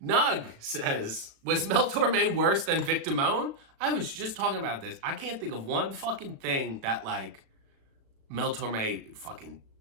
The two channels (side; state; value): left; late; 36 ms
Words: Nug says, was Mel Torme worse than Vic Damone? I was just talking about this. I can't think of one fucking thing that, like, Mel Torme fucking